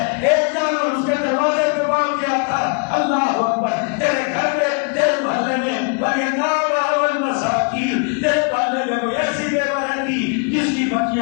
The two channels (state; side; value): quieter; right; 37.0 dB